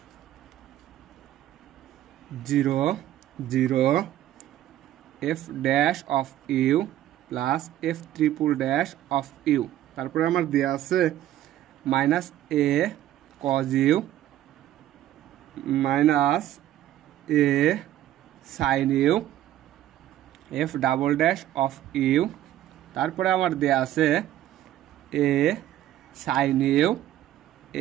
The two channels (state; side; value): quieter; left; 12.9 dB